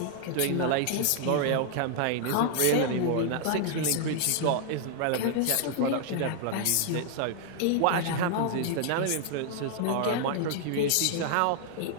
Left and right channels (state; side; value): different; both; correlation 0.00